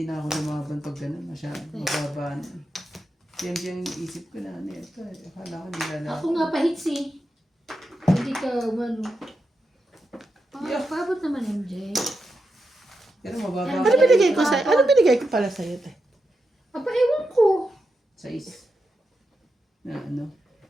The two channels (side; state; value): both; normal; correlation 0.87